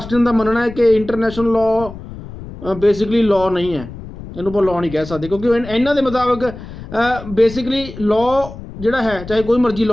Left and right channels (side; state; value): left; noise; rumble, 13 dB below the sound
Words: ਦਾ ਮੰਨਣਾ ਹੈ ਕਿ ਇੰਟਰਨੈਸ਼ਨਲ ਲਾਅ ਬੇਸਿਕਲੀ ਲਾਅ ਨਹੀਂ ਹੈ, ਇਹਨੂੰ ਆਪਾਂ ਲਾਅ ਨਹੀਂ ਕਹਿ ਸਕਦੇ, ਕਿਉਂਕਿ ਇਹਨਾਂ ਦੇ ਮੁਤਾਬਕ ਬੇਸਿਕਲੀ ਲਾਅ ਜਿਹੜਾ ਹੈ, ਚਾਹੇ ਕੋਈ ਮਰਜ਼ੀ